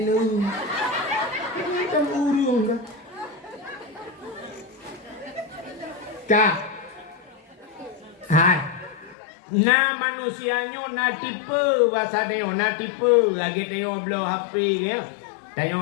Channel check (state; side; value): drops out; right; at 9.2 s